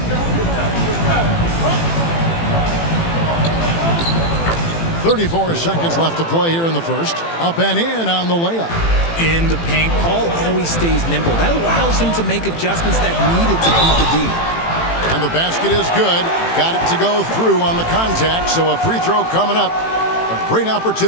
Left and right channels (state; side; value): late; right; 18 ms